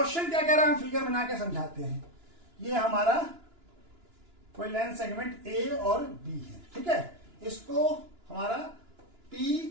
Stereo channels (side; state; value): left; late; 2.9 ms